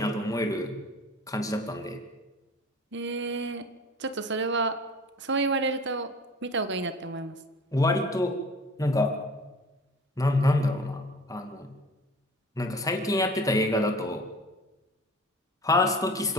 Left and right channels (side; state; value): both; normal; correlation 0.43